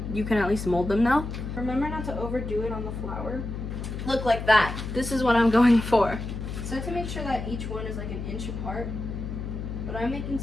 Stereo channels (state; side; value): noise; left; hum, 6 dB below the sound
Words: you can at least mold them now. Remember not to overdo it on the flour. Look like that. This is what I'm going for. So to make sure that each one is like an inch apart, but I'm making